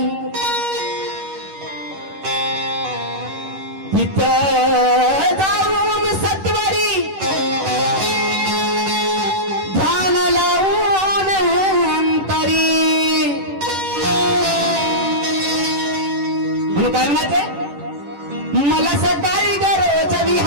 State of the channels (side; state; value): left; late; 10 ms